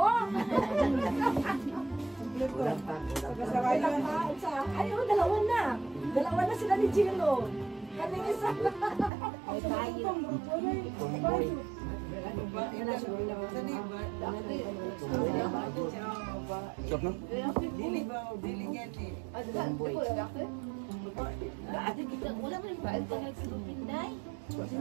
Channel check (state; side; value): drops out; left; at 9.1 s